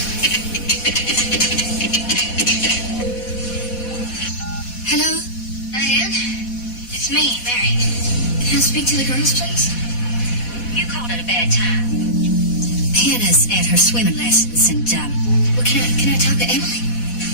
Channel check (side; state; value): right; late; 4.1 ms